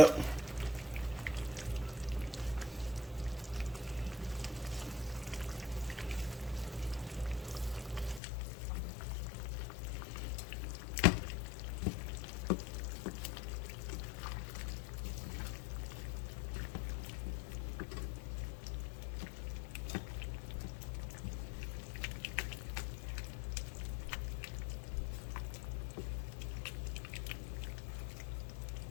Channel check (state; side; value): drops out; right; at 8.2 s